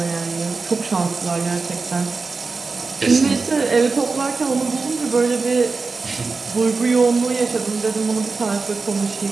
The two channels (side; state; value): left; quieter; 4.3 dB